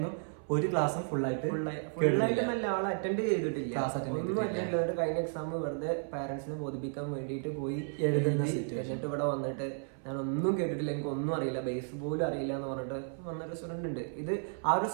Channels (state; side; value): silent; left; 56 dB below the other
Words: ഒരു ക്ലാസ്സും ഫുള്ളായിട്ട് നല്ല ആൾ അറ്റൻഡ് ചെയ്തിട്ടില്ല. ഒന്നും അറ്റൻഡ് കഴിഞ്ഞ എക്സാം വെറുതെ പാരന്റ്സിനെ ബോധിപ്പിക്കാൻ വേണ്ടിയിട്ട് പോയി എഴുതുന്ന. എന്നിട്ട് ഇവിടെ വന്നിട്ട് ഞാൻ ഒന്നും കേട്ടിട്ടില്ല, എനിക്ക് ഒന്നും അറിയില്ല, ബേസ് പോലും അറിയില്ല എന്ന് പറഞ്ഞിട്ട് വന്നൊരു സ്റ്റുഡന്റ് ഉണ്ട്. ഇത് ആ ഒരു